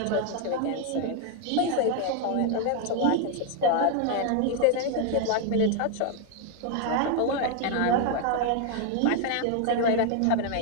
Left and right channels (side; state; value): both; different; correlation 0.00